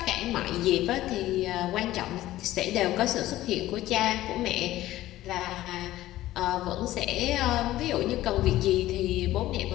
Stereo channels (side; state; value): right; quieter; 15.3 dB